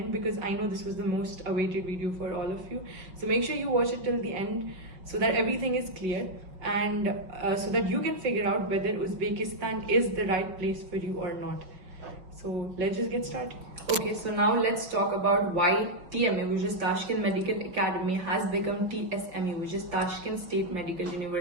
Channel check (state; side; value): late; left; 5.7 ms